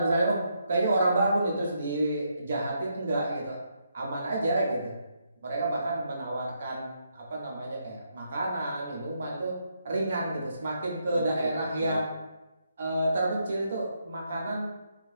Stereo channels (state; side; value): inverted; both; correlation -0.78